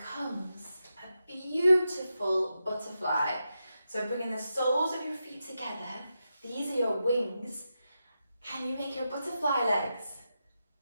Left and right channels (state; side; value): inverted; both; correlation -0.88